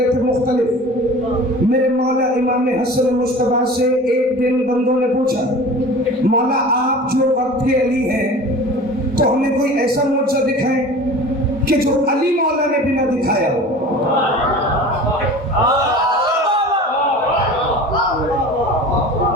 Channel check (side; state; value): both; normal; correlation 0.39